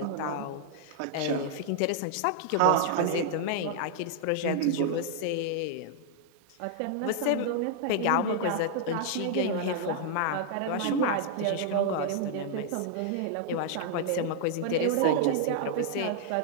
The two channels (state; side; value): different; both; correlation -0.01